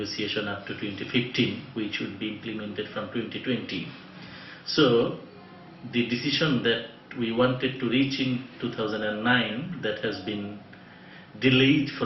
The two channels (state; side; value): identical; both; correlation 1.00